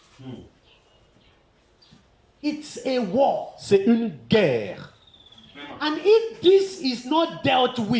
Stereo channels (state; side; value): identical; both; correlation 1.00